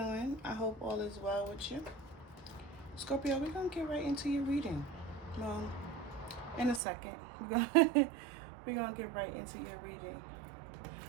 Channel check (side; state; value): left; drops out; at 6.8 s